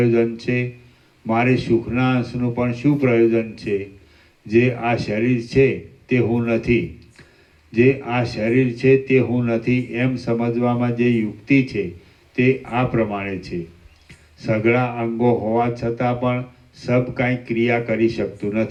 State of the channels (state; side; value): identical; both; correlation 1.00